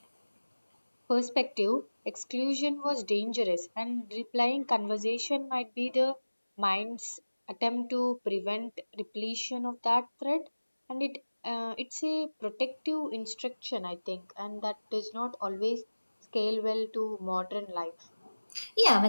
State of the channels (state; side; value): inverted; both; correlation -1.00